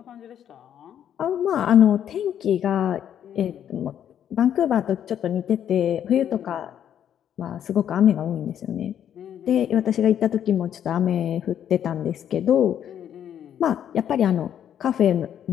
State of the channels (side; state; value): right; quieter; 9.7 dB